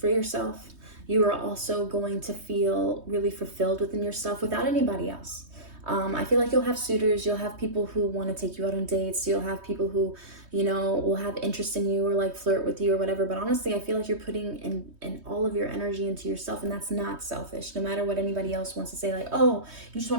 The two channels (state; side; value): late; left; 3.2 ms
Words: yourself. You are also going to feel really fulfilled within yourself without anybody else. I feel like you'll have suitors, you'll have people who want to take you out on dates, you'll have people who, you know, will have interest in you or like flirt with you or whatever. But honestly, I feel like you're putting in all of your energy into yourself, and that's not selfish. No matter what anybody else wants to say, like, oh, you just